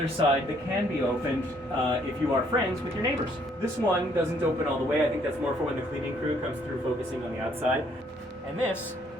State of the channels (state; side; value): normal; both; correlation 0.66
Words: side that can be opened if you are friends with your neighbors. This one doesn't open all the way. I think that's more for when the cleaning crew comes through focusing on the outside. And this